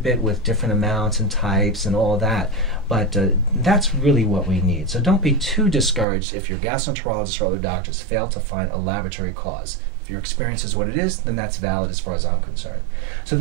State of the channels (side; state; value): left; drops out; at 6.1 s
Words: with different amounts and types and all that, but that's really what we need. So don't be too discouraged if your gastroenterologist or other doctors fail to find a laboratory cause. If your experience is what it is, then that's valid as far as I'm concerned. So